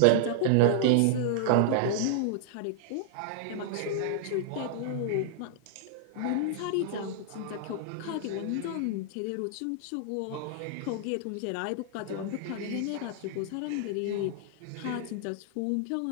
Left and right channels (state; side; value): different; both; correlation -0.01